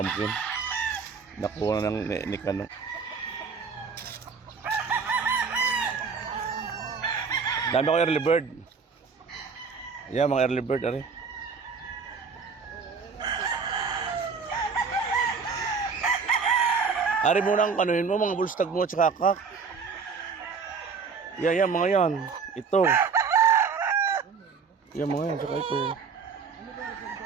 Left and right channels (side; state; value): left; quieter; 5.5 dB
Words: Nakuha na ng Nikano. Dami ako early bird. Yan, mga early bird, ari. Ari mo nang kanuhin mo, mga bulstag mo at saka kak. Yan, mga yan. Ito. Yan, mga yan, saka ito.